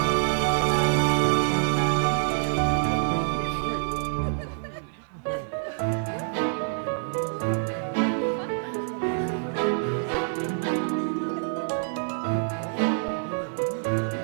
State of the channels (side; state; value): left; silent; digital silence